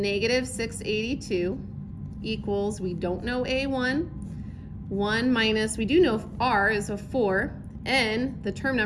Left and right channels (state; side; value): identical; both; correlation 1.00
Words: equals, we don't know A1, 1 minus, we do know R is a 4, N, the term